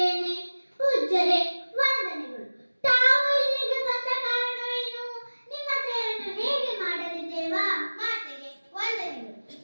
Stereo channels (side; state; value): both; inverted; correlation -1.00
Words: ಪೂಜ್ಯರೇ, ವಂದನೆಗಳು. ತಾವು ಇಲ್ಲಿಗೆ ಬಂದ ಕಾರಣವೇನು? ನಿಮ್ಮ ಸೇವೆಯನ್ನು ಹೇಗೆ ಮಾಡಲಿ ದೇವಾ? ಮಾತೆಗೆ ವಂದನೆಗಳು.